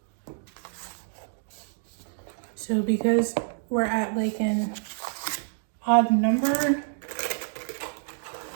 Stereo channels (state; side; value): silent; left; digital silence